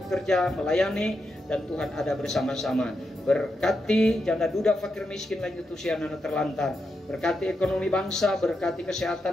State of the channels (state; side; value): normal; both; correlation 0.85